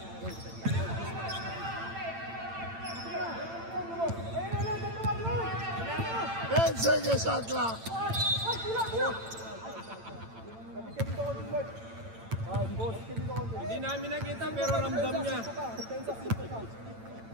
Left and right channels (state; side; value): late; left; 8.9 ms